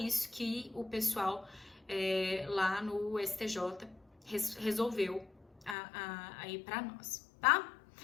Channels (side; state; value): right; drops out; at 5.8 s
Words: que o pessoal lá no STJ resolveu aí para nós, tá?